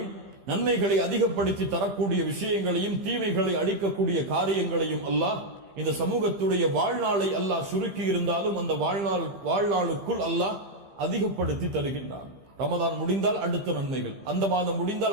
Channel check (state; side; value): late; left; 15 ms